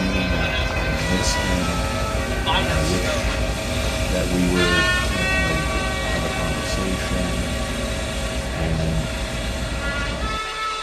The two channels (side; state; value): both; identical; correlation 1.00